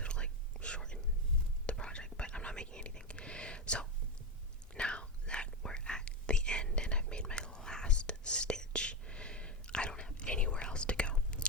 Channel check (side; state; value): both; normal; correlation 0.13